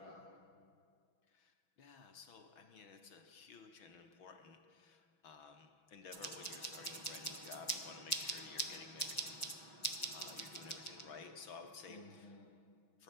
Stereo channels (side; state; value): right; late; 6.2 ms